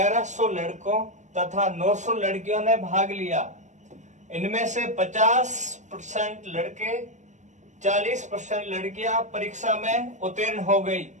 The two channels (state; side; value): late; left; 0.35 ms